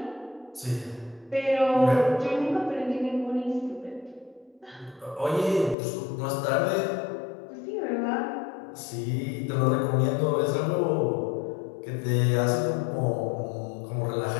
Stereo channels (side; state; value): right; drops out; at 5.8 s